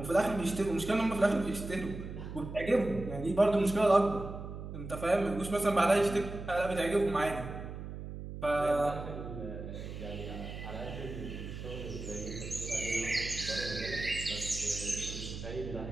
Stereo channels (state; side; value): noise; right; hum, 9 dB below the sound